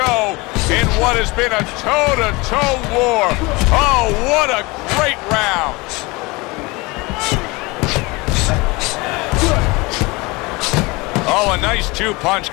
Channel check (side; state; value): right; quieter; 24.5 dB